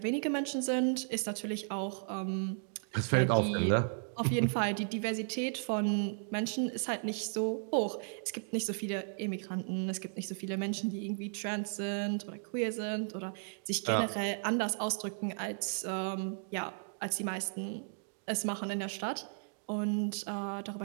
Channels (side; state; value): left; silent; digital silence